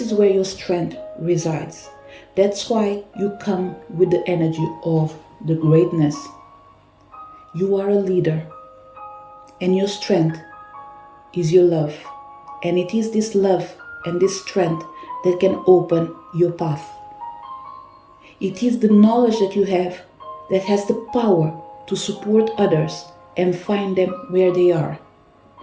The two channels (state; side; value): identical; both; correlation 1.00